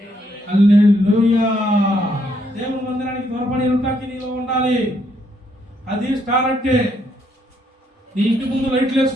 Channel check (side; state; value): both; normal; correlation 0.73